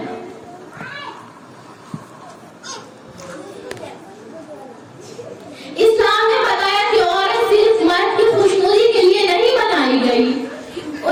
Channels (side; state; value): both; identical; correlation 1.00